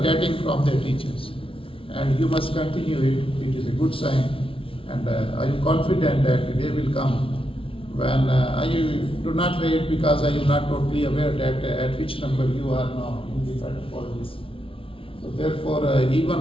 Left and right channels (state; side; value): late; right; 0.26 ms